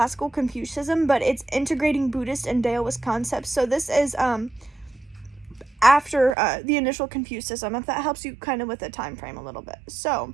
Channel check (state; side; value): drops out; left; at 6.4 s